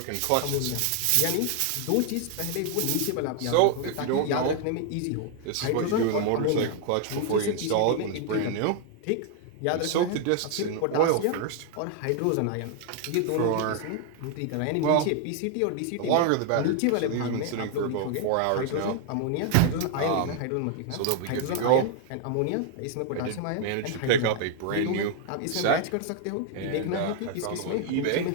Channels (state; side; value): different; both; correlation 0.00